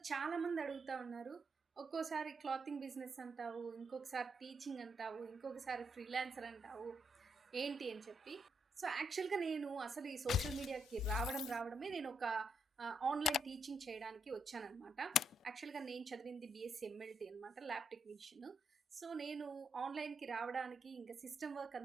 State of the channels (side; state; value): both; normal; correlation 0.78